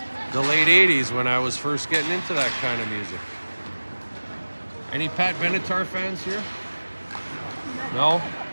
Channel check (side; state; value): both; inverted; correlation -1.00